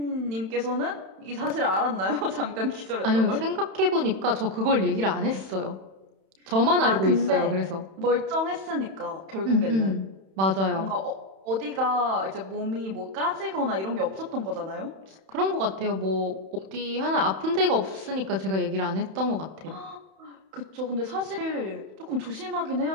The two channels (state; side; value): late; left; 31 ms